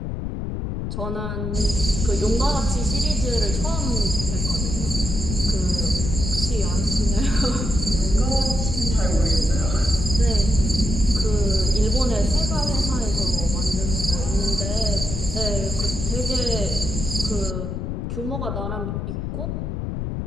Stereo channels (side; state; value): left; noise; rumble, 3 dB below the sound